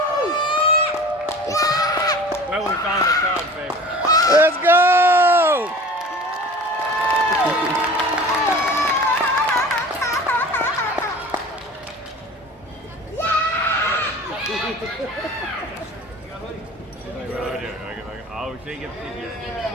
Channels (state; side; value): normal; both; correlation 0.41